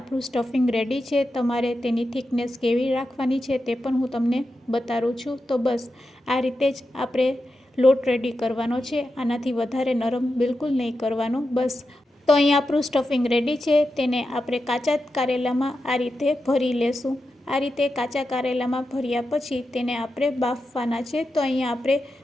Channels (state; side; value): normal; both; correlation 0.89